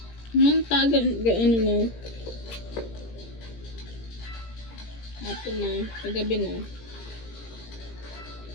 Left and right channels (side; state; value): right; late; 17 ms